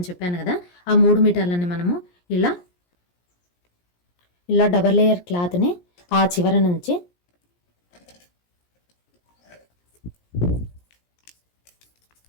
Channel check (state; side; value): late; right; 17 ms